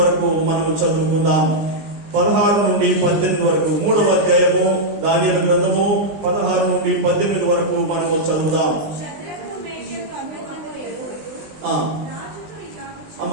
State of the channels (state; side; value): late; left; 20 ms